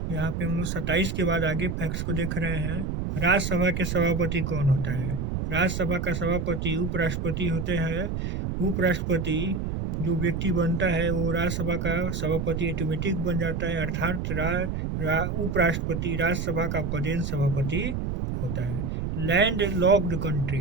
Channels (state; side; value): noise; right; rumble, 2 dB below the sound